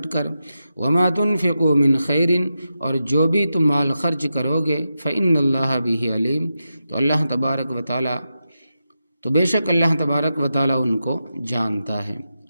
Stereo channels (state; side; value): inverted; both; correlation -0.89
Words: کر، وما تنفقوا من خیر، اور جو بھی تم مال خرچ کرو گے، فإن اللہ بہ علیم، تو اللہ تبارک و تعالی، تو بے شک اللہ تبارک و تعالی ان کو جانتا ہے۔